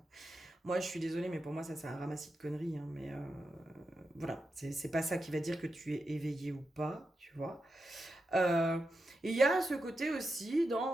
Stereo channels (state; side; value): normal; both; correlation 0.88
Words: Moi, je suis désolée, mais pour moi, ça, c'est un ramassis de conneries, hein, mais voilà, c'est pas ça qui va dire que tu es éveillé ou pas, tu vois. Euh, et il y a ce côté aussi